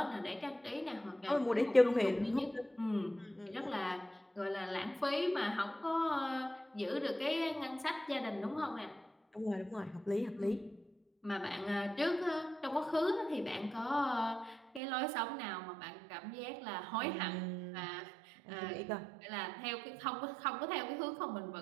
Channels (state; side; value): drops out; left; at 14.8 s